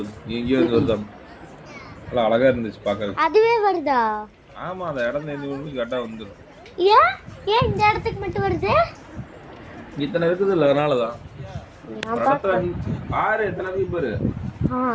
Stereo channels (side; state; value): both; identical; correlation 1.00